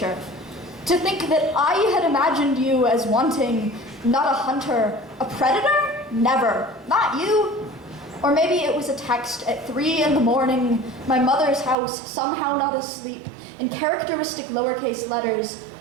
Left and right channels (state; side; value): drops out; left; at 11.8 s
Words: To think that I had imagined you as wanting, not a hunter, a predator? Never. Not you. Or maybe it was a text at 3 in the morning, my mother's house, somehow not asleep, in characteristic lowercase letters.